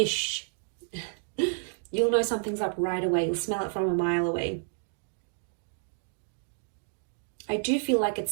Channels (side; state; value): left; silent; digital silence